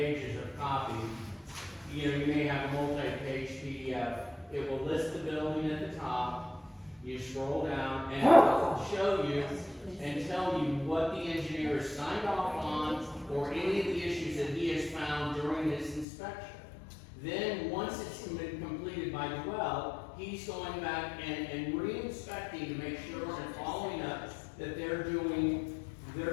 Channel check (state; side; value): drops out; right; at 16.1 s